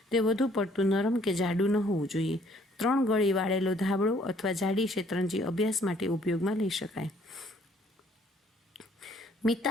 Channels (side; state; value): both; normal; correlation 0.62